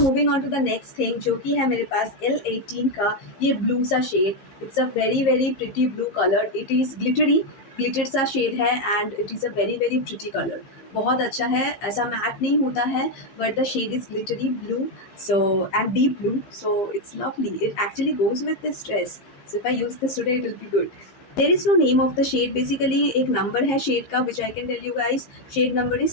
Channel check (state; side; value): late; right; 15 ms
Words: moving on to the next thing जो कि है मेरे पास L18 का ये ब्लू सा shade. It's a very very pretty blue colour. It is glittered सा shade है and it is a very very pretty colour. बहुत अच्छा है, ऐसा मैट नहीं होता है but the shade is glittery blue so and deep blue. So it's lovely. It actually goes with this dress. So if I use this today it will be good. There is no name of the shade, basically एक number है shade का which I can tell you guys, shade number